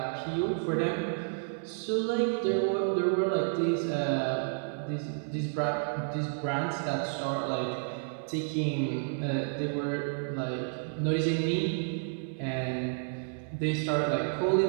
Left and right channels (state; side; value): silent; left; 57 dB below the other